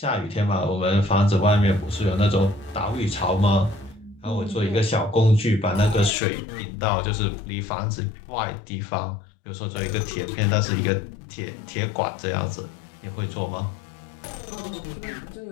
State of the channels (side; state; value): right; drops out; at 6.1 s